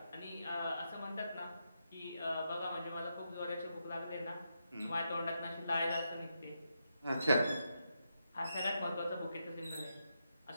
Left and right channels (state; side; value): inverted; both; correlation -0.83